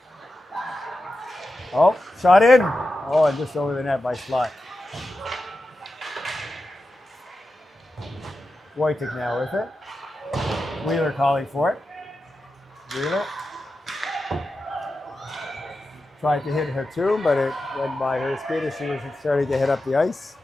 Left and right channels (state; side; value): normal; both; correlation 0.91